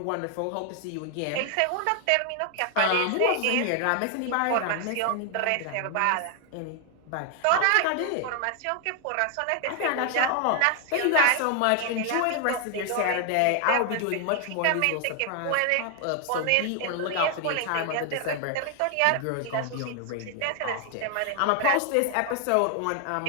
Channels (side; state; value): both; different; correlation 0.01